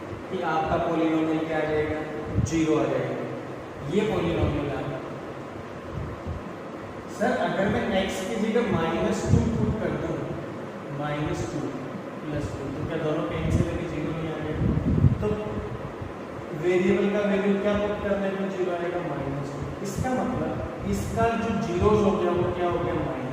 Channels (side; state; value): both; identical; correlation 1.00